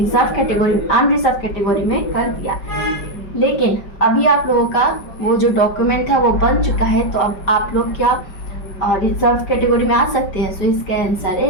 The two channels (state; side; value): late; right; 5.2 ms